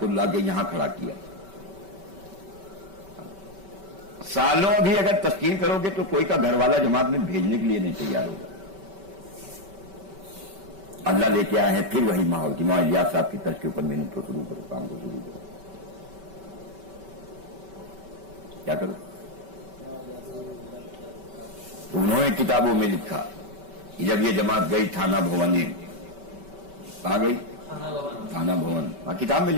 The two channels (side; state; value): left; late; 5.2 ms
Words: لا کے یہاں کھڑا کیا. سالوں بھی اگر تشکیل کرو گے تو کوئی کا گھر والا جماعت میں بھیجنے کے لیے نہیں تیار ہوگا. اللہ لے کے آئے ہیں پھر وہی ماحول کی معاویہ صاحب کی طرز کے اوپر محنت کو شروع کرو، کام کو شروع کرو. کیا کرو؟ تو انہوں نے کتابوں میں لکھا کہ جب یہ جماعت گئی تھانہ بھونے، کہاں گئی؟ تھانہ بھون. ہاں کتاب میں